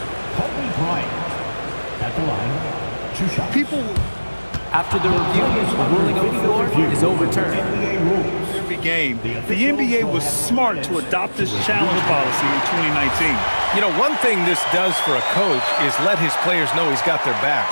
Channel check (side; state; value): both; inverted; correlation -1.00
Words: At the line, 2 shots. People, After the review, the ruling on the floor is overturned. every game, the NBA was smart to adopt this challenge policy in 2019. You know, one thing this does for a coach is let his players know he's got their back.